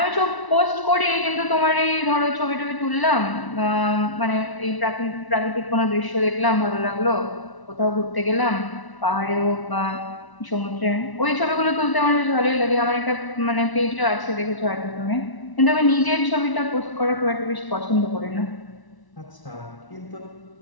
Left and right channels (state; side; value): late; right; 1.0 ms